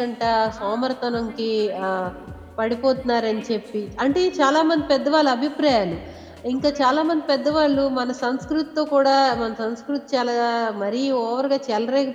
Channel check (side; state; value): both; identical; correlation 1.00